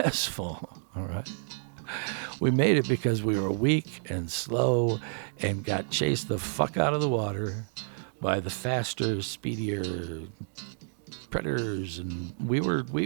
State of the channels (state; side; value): silent; left; digital silence